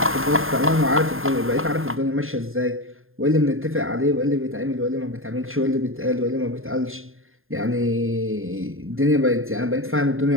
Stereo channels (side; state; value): left; late; 0.60 ms